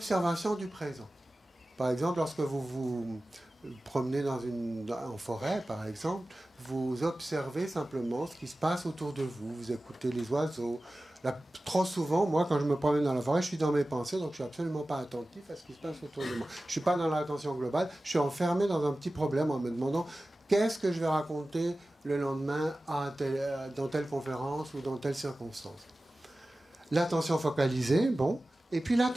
du présent. Par exemple, lorsque vous vous promenez en forêt, par exemple, vous observez simplement ce qui se passe autour de vous. Vous écoutez les oiseaux. Là, trop souvent, moi, quand je me promène dans la forêt, je suis dans mes pensées, donc je suis absolument pas attentif à ce qui se passe autour de moi. Je suis pas dans l'attention globale, je suis enfermé dans un petit problème en me demandant qu'est-ce que je vais raconter le lendemain dans telle conférence ou dans telle circonstance. L'attention focalisée, bon, et puis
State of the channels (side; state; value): both; normal; correlation 0.96